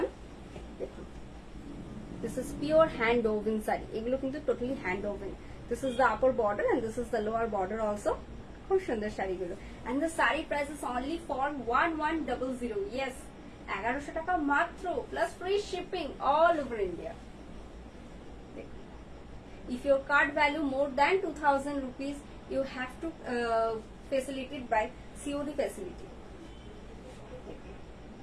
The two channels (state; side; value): identical; both; correlation 1.00